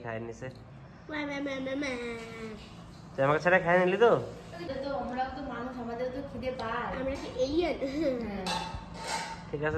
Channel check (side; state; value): both; identical; correlation 1.00